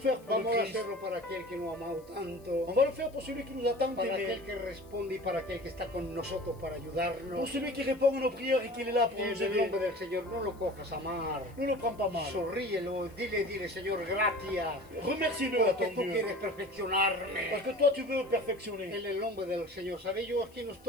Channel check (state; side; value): noise; left; hiss, 28 dB below the sound